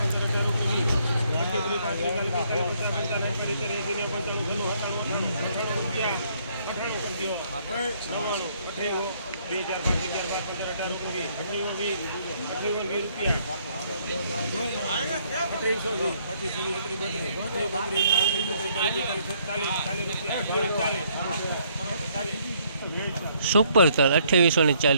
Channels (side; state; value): both; inverted; correlation -0.67